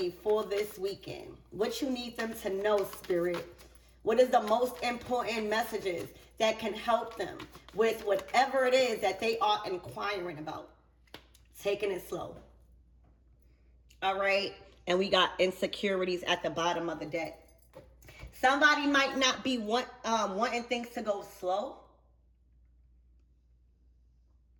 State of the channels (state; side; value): identical; both; correlation 1.00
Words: for this weekend. What you need them to know, spirit. What is the most important messages that can help them with whatever it is that they are inquiring about? Taking it slow. All right. And we got insecurities at the bottom of the deck. Somebody might not be wanting things to go slow.